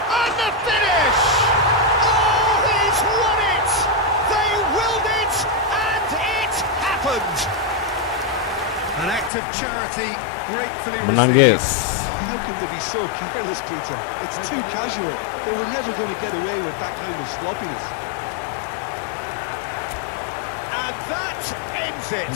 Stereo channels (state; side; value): drops out; right; at 9.3 s